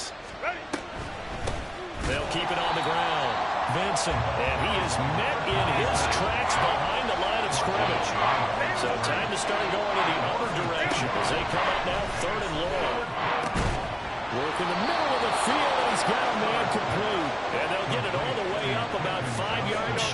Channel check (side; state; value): both; identical; correlation 1.00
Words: They'll keep it on the ground. Vincent, and he is met in his tracks behind the line of scrimmage. So time to start going in the other direction as they come up now 3rd and long. Work in the middle of the field, and he's got a man complete. And they'll get it all the way up about 5 yards